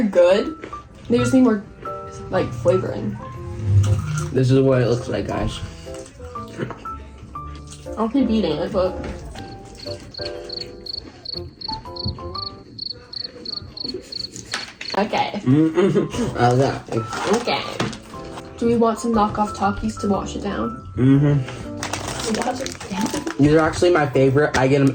good. They just need more like flavoring. This is what it looks like, guys. I'll keep eating it, but okay. Okay. Do we want some knockoff Takis to wash it down? Wash it down. These are actually my favorite. I get them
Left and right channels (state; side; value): identical; both; correlation 1.00